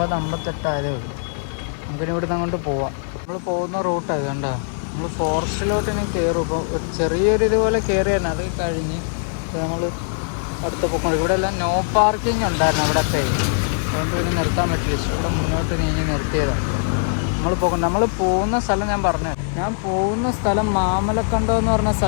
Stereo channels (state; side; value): silent; right; digital silence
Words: ആയതേ ഉള്ളൂ. നമുക്കിനി ഇവിടുന്ന് അങ്ങോട്ട് പോവാം. നമ്മൾ പോകുന്ന റൂട്ടാണ് കണ്ടോ? നമ്മൾ ഫോറസ്റ്റിലോട്ട് ഇനി കയറും. ഇപ്പോൾ ഒരു ചെറിയൊരു ഇതുപോലെ കയറിയാണ്. അത് കഴിഞ്ഞ് നമ്മൾ അടുത്ത പൊക്കം. ഇവിടെ എല്ലാം നോ പാർക്കിംഗ് ഉണ്ടായിരുന്നു അവിടെയൊക്കെ. അതുകൊണ്ട് പിന്നെ നിർത്താൻ പറ്റില്ല. ഇവിടെ മുന്നോട്ട് നീങ്ങി നിർത്തിയതാണ്. നമ്മൾ പോകുന്ന സ്ഥലം ഞാൻ പോകുന്ന സ്ഥലം മാമലക്കണ്ടം എന്ന് പറഞ്ഞ